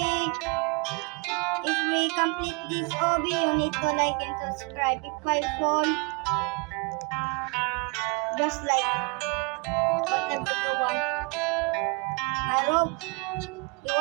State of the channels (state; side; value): quieter; left; 31.3 dB